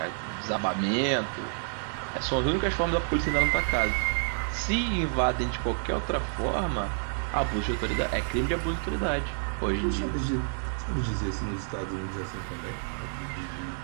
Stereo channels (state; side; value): silent; left; digital silence